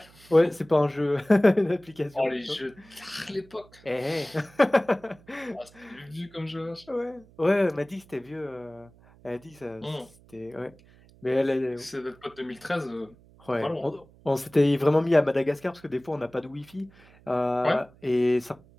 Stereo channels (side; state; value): right; noise; hum, 26 dB below the sound